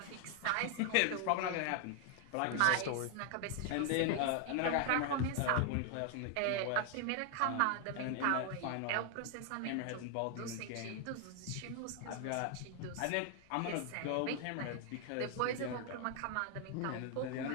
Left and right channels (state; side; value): different; both; correlation 0.00